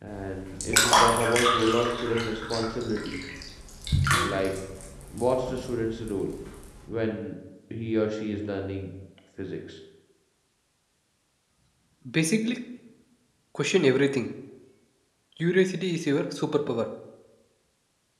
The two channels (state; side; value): identical; both; correlation 1.00